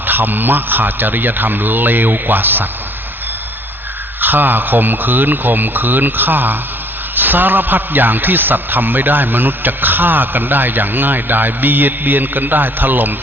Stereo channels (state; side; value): normal; both; correlation 0.58